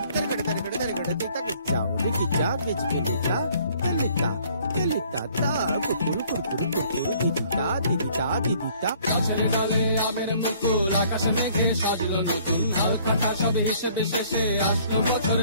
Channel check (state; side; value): inverted; both; correlation -0.59